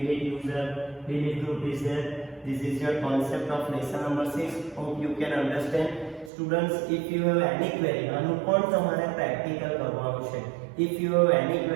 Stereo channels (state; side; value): drops out; left; at 6.3 s